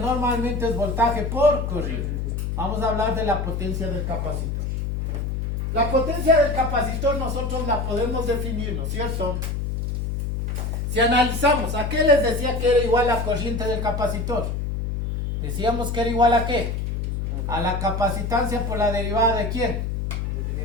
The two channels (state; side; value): noise; left; hum, 2 dB below the sound